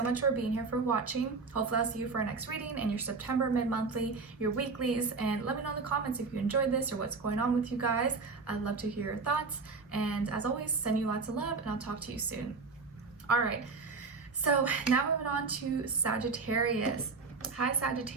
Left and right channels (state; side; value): quieter; left; 4.3 dB